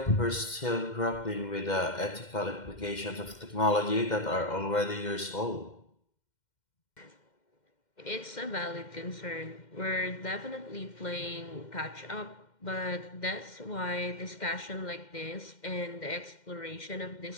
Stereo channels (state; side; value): late; right; 2.1 ms